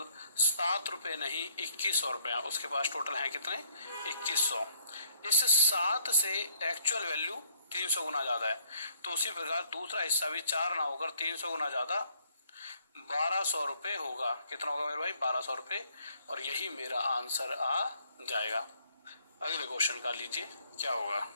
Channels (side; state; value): both; inverted; correlation -0.67